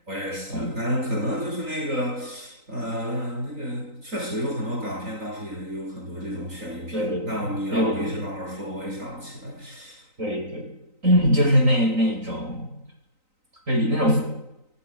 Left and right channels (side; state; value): left; late; 3.9 ms